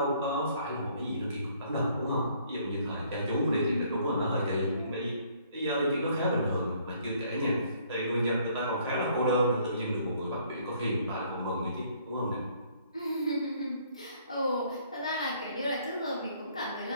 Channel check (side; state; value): both; inverted; correlation -0.63